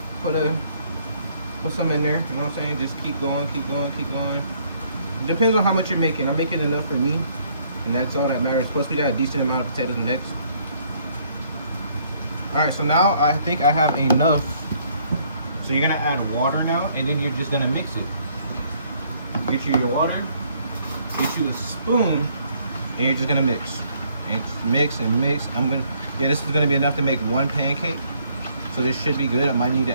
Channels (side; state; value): both; inverted; correlation -0.65